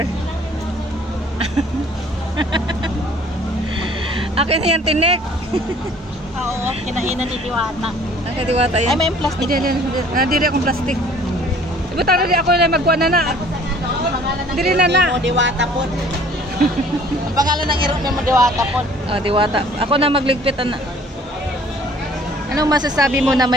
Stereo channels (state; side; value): normal; both; correlation 0.53